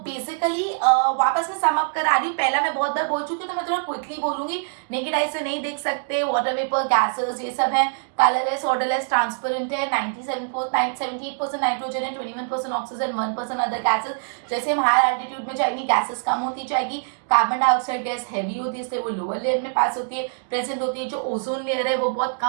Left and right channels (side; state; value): left; silent; digital silence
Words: बेसिकली वापस में सम अप करा रही हूँ। पहला मैं बहुत बार बोल चुकी हूँ तो मैं थोड़ा क्विकली बोलूंगी। नेकेड आई से नहीं देख सकते, वाटर वेपर, गैसेस, ये सब है। कलरलेस, ऑर्डरलेस, ट्रांसपेरेंट है। 78% नाइट्रोजन है, 21% ऑक्सीजन, 1% अदर गैसेस। जैसे हम हाई एल्टीट्यूड में जाएंगे गैसेस कम होती जाएगी। कार्बन डाइऑक्साइड गैस हैवी होती है इसलिए वो लोअर लेयर में पास होती है, प्रेजेंट होती है। जो ओजोन लेयर है वो बहुत